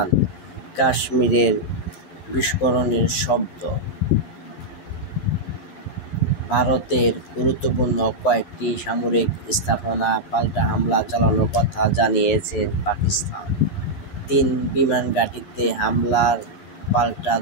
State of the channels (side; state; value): right; late; 11 ms